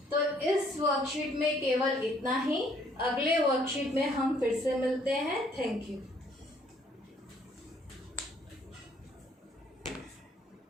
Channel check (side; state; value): both; normal; correlation 0.63